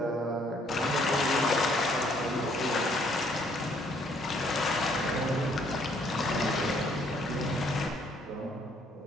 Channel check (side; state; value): both; normal; correlation 0.65